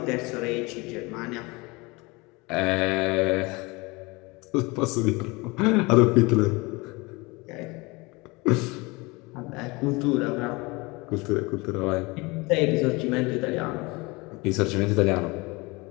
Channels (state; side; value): quieter; right; 25.1 dB